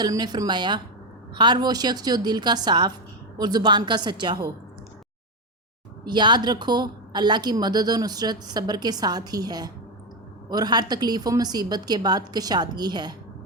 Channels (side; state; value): both; normal; correlation 0.09